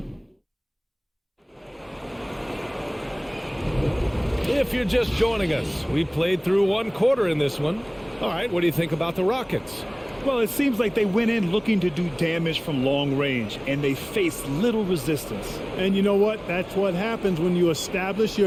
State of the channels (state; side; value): identical; both; correlation 1.00